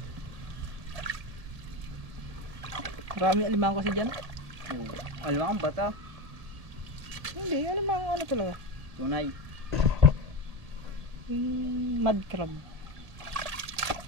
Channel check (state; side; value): late; left; 1.8 ms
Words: Marami alimango kasi dyan. Alam ang bata. Hindi, alimango ano talaga. Tunay. Mud crab.